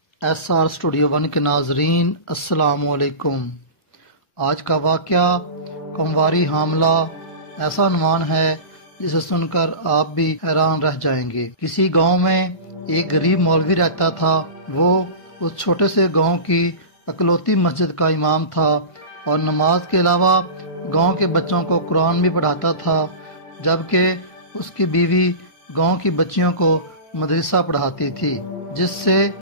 SR اسٹوڈیو 1 کے ناظرین السلام علیکم۔ آج کا واقعہ کمواری حاملہ ایسا عنوان ہے جسے سن کر آپ بھی حیران رہ جائیں گے۔ کسی گاؤں میں ایک غریب مولوی رہتا تھا۔ وہ اس چھوٹے سے گاؤں کی اکلوتی مسجد کا امام تھا اور نماز کے علاوہ گاؤں کے بچوں کو قرآن بھی پڑھاتا تھا، جبکہ اس کی بیوی گاؤں کی بچیوں کو مدرسہ پڑھاتی تھی، جس سے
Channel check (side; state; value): right; late; 1.4 ms